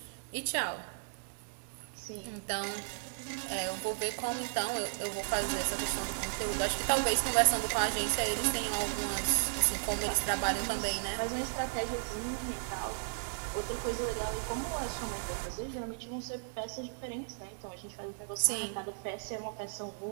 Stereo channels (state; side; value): silent; left; digital silence